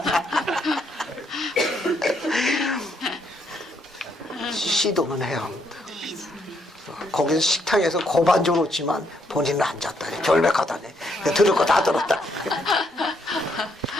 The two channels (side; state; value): both; normal; correlation 0.74